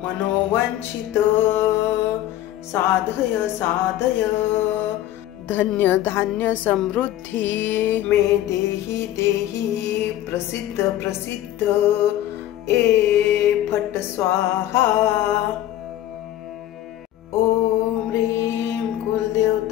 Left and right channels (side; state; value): right; quieter; 13.2 dB